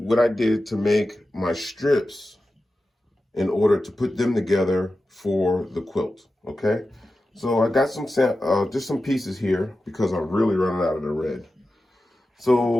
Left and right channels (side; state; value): both; normal; correlation 0.93